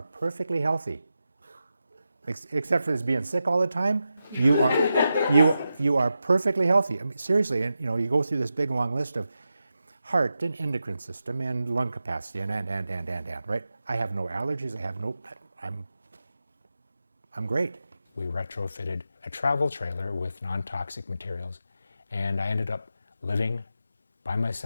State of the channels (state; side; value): inverted; both; correlation -0.90